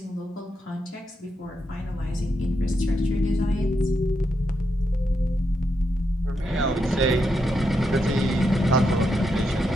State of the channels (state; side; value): normal; both; correlation 0.83